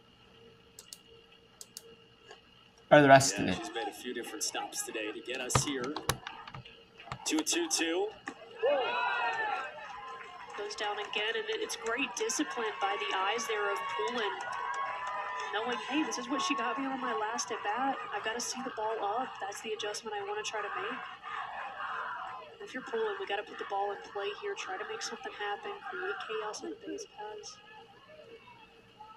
Or the rest of it. She's made a few different stops today to get us here. 2-2-2. Goes down again, and it's great discipline by the eyes there of Poulin. Knowing, hey, this is what she got me on my last at bat. I've got to see the ball up. That's the adjustment I want to try to make. If you're Poulin, we got to put the ball in play here, try to make something happen, create chaos on the base paths.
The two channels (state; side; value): identical; both; correlation 1.00